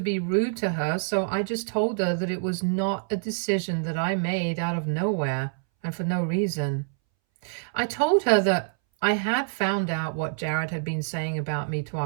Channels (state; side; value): silent; left; 61 dB below the other